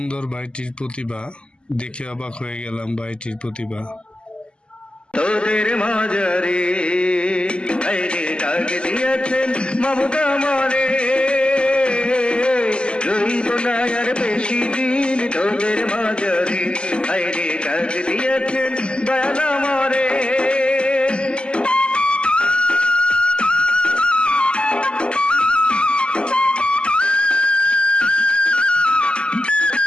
ভাইটির প্রতিভা, দেখে অবাক হয়ে গেলাম ভাইটির প্রতিভা। তোদের মাঝারে আইরে ডাক দিয়েছেন মমতা মারে, রইব না আর বেশি দিন তোদের মাঝারে আইরে ডাক দিয়েছেন দয়ালা মারে।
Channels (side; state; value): right; late; 0.050 ms